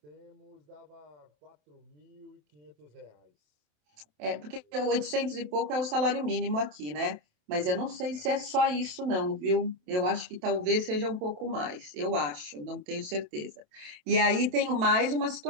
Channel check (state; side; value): late; left; 27 ms